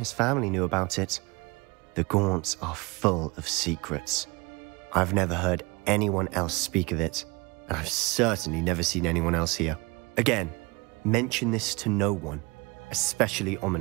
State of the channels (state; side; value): quieter; left; 25.9 dB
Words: family knew about it. The Gaunts are full of secrets. I've never heard anyone else speak of it, and I've certainly never seen anyone else here. Again, mention this to no one, especially